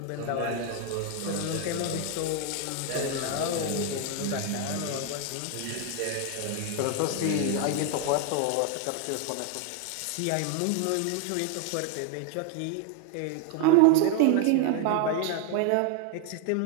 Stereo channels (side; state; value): both; different; correlation 0.01